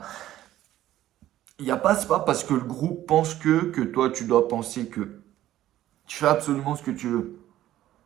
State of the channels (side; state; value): left; quieter; 13.6 dB